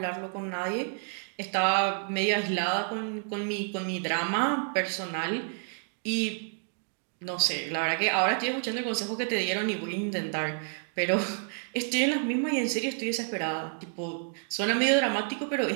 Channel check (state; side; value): silent; left; 58 dB below the other